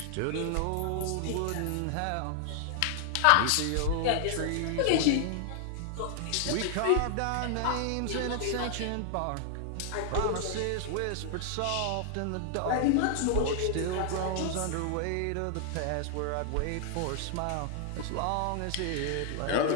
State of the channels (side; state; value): both; different; correlation 0.00